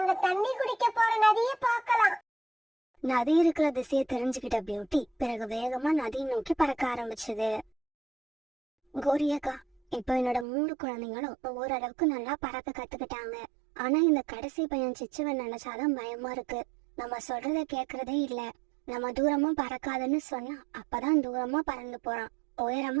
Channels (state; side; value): drops out; left; at 10.5 s